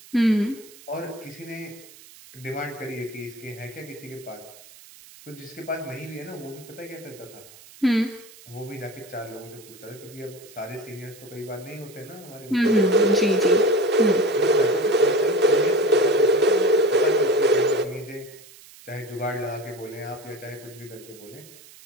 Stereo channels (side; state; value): right; noise; hiss, 21 dB below the sound